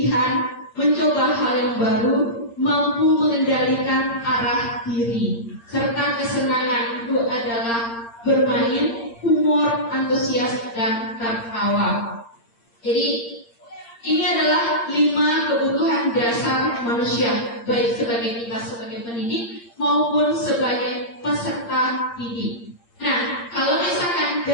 mencoba hal yang baru, mampu mengendalikan arah diri. Serta kesenangan itu adalah bermain, humor, antusias, dan tertawa. Jadi ini adalah 5 kebutuhan dasar manusia, baik sebagai kita sebagai pendidik maupun sebagai peserta didik. Nah, kalau misalkan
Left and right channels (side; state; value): right; late; 8.7 ms